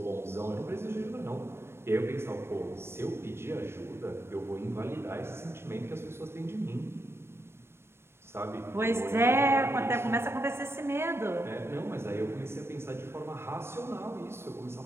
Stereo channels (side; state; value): left; late; 0.12 ms